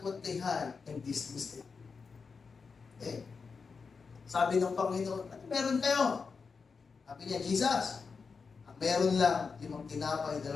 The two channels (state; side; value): quieter; right; 5.1 dB